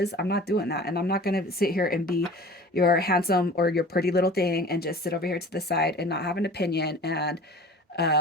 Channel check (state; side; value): normal; both; correlation 0.42